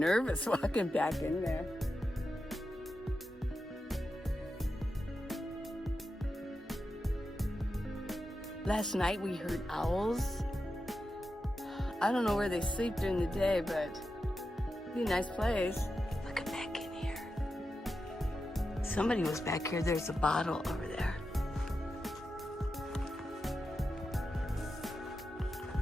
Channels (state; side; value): normal; both; correlation 0.89